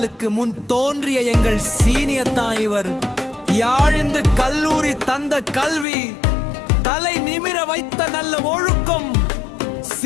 முன் தோன்றிய எங்கள் சீனியர் தான் இவர். யாழிந்து கல்லூரி தந்த கல்வி, தலை நிமிர வைத்த நல்ல ஒழுக்கம்,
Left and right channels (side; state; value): right; drops out; at 5.9 s